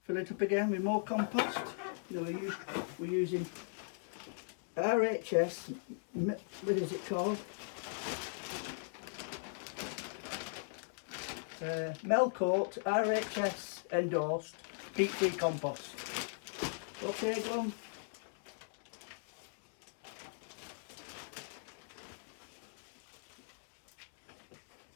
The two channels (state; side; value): silent; right; digital silence